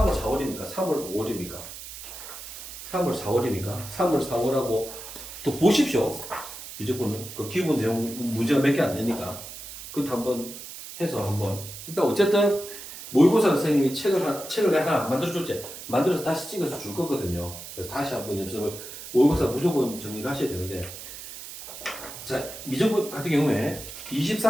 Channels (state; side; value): noise; right; hiss, 12 dB below the sound